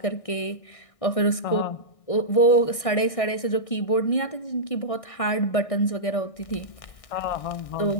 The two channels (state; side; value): late; right; 1.6 ms